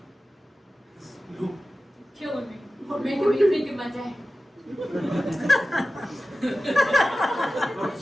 No. Killing me. Making me think of my dad. I'm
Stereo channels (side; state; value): both; normal; correlation 0.95